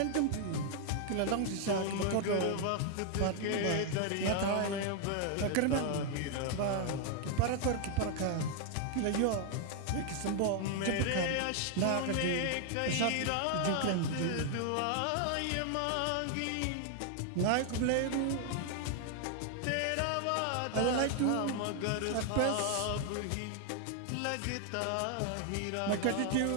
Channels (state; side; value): different; both; correlation 0.00